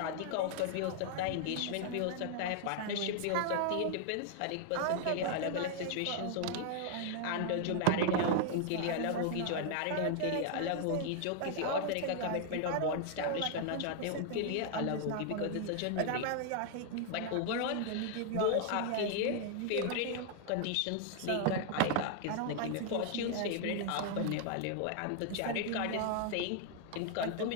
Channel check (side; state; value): both; different; correlation 0.00